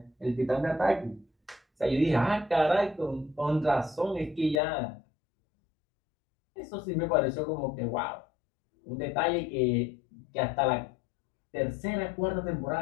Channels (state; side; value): drops out; right; at 4.6 s